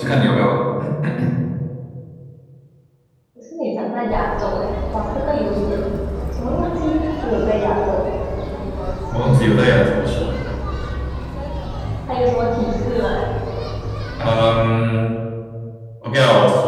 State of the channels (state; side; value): identical; both; correlation 1.00